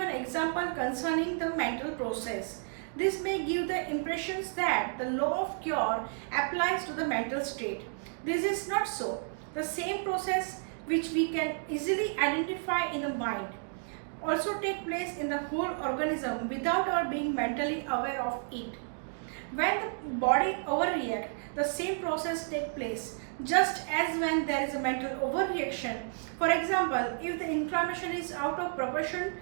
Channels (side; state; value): left; silent; 57 dB below the other